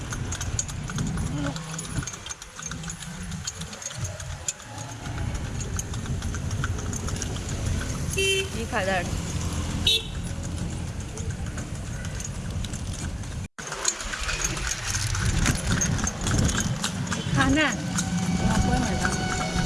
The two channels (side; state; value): both; identical; correlation 1.00